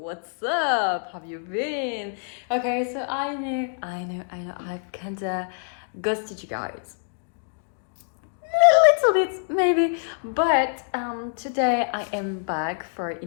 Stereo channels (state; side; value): silent; right; digital silence